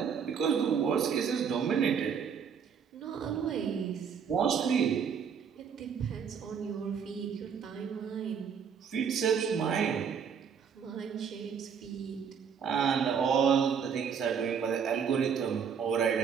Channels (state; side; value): quieter; left; 7.0 dB